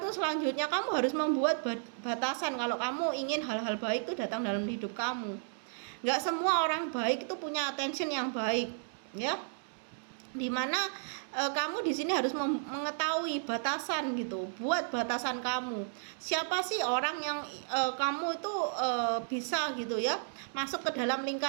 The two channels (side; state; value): left; silent; digital silence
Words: selanjutnya kamu harus membuat batasan kalau kamu ingin hal-hal baik itu datang dalam hidup kamu. Nggak semua orang baik itu punya attention yang baik, ya. Dimana kamu di sini harus mengetahui batasan gitu. Buat batasan kamu. Siapa sih orang yang kamu itu bisa gitu ya masuk ke dalam